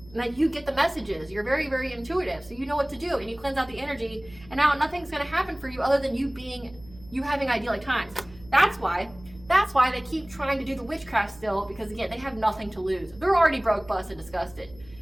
And that you get the messages. You're very, very intuitive. So you know what to do. And you cleanse out the energy. And now nothing's going to happen for you other than you having idyllic times. That's why they keep trying to do the witchcraft still. Because again, they have nothing to lose. They're already broke, busted, disgusted.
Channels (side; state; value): right; noise; hum, 22 dB below the sound